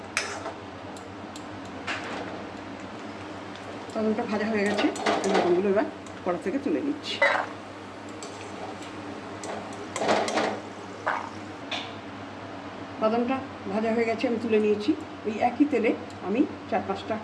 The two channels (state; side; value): identical; both; correlation 1.00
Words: বাদামটা ভাজা হয়ে গেছে, বাদামগুলো এবার কড়া থেকে তুলে নিচ্ছি। বাদামটা ভাজা হয়ে গেছে, আমি তুলে নিয়েছি। ওই একই তেলে আমি 4-5টা